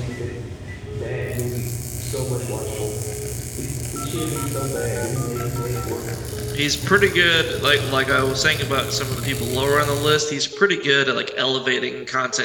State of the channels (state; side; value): identical; both; correlation 1.00